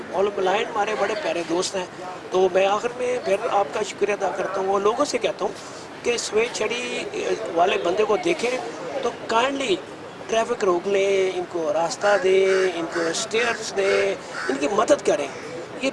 और ब्लाइंड हमारे बड़े प्यारे दोस्त हैं। तो मैं आखिर में फिर आपका शुक्रिया अदा करता हूँ और लोगों से कहता हूँ कि सफ़ेद छड़ी वाले बंदे को देखें तो काइंडली ट्रैफिक रोक लें, इनको रास्ता दें, इनको स्टेयर्स दें, इनकी मदद करें। ये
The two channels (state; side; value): identical; both; correlation 1.00